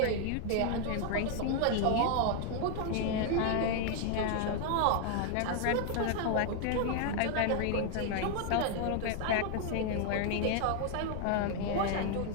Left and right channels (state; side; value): different; both; correlation 0.00